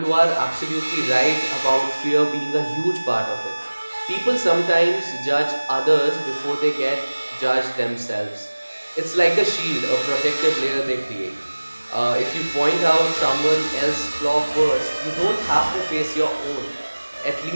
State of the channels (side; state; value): both; inverted; correlation -1.00